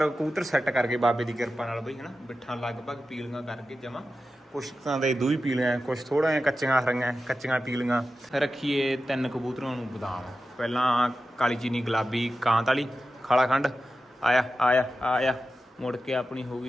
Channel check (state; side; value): normal; both; correlation 0.92